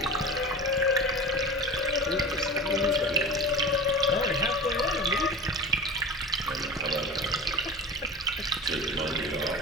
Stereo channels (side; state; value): both; normal; correlation 0.30